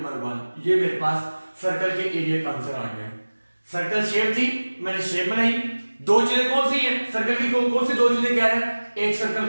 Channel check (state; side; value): inverted; both; correlation -1.00